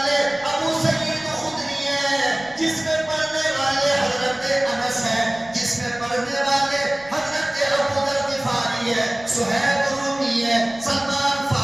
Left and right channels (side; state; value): right; noise; rumble, 25 dB below the sound